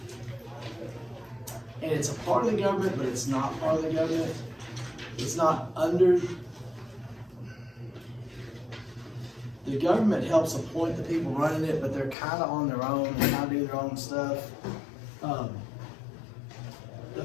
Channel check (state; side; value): drops out; right; at 12.2 s